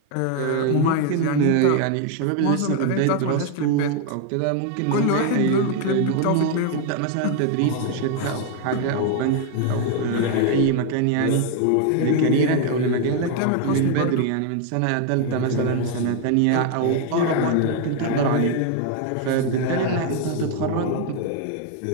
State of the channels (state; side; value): different; both; correlation 0.00